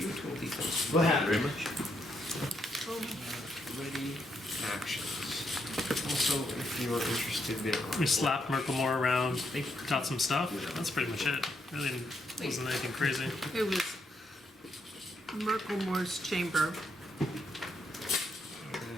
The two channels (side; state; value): both; normal; correlation 0.78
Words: Total defense. What happened? Very much. Ready. Actions. Also, if you are interested, there are... We slapped Merklemore around, got some stuff. That's pretty much it. Really wasn't anything crazy. It was Merklemore's chamber.